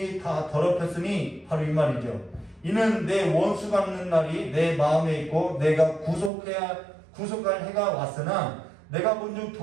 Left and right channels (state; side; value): drops out; left; at 6.3 s